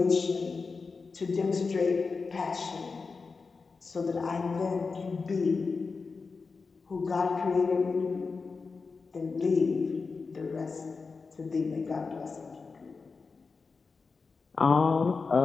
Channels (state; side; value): quieter; right; 4.6 dB